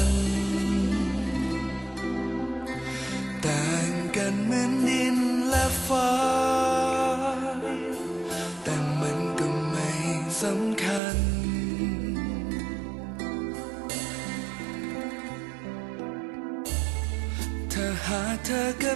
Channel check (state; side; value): drops out; left; at 11.0 s